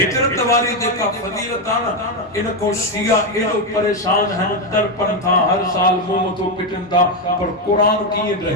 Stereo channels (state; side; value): normal; both; correlation 0.07